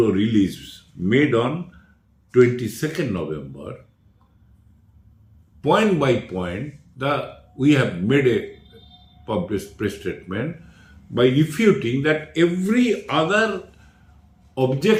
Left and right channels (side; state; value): both; identical; correlation 1.00